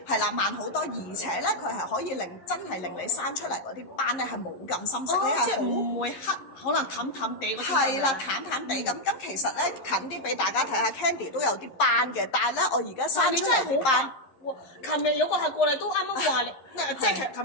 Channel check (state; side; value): late; right; 11 ms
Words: 係啦，慢好多，而且咧佢係可以真係令你生出嚟嗰啲斑咧係冇咁深色，你係唔會黑，可能淡淡地嗰啲。係啦，淡地。咁其實咧近啲俾大家睇下 ，Candy 都有啲斑嘅，但係咧我而家生出嚟啲斑，琴日有個客過嚟都啱啱話你，即係